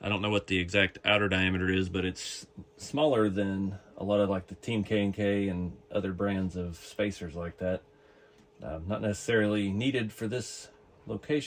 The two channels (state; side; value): identical; both; correlation 1.00